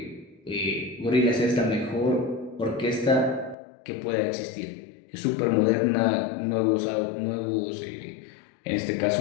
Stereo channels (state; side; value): drops out; right; at 3.6 s